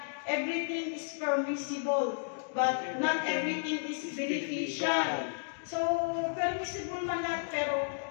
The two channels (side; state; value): right; silent; digital silence